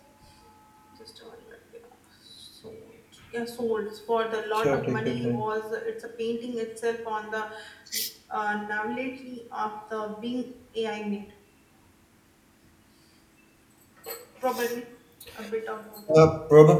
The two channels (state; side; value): identical; both; correlation 1.00